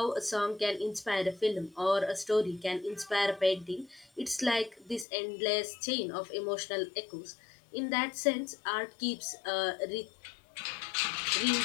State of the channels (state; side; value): drops out; right; at 5.1 s